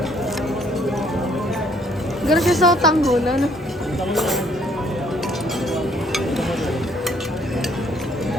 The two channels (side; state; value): both; normal; correlation 0.64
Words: Gara siya sa tanggulan.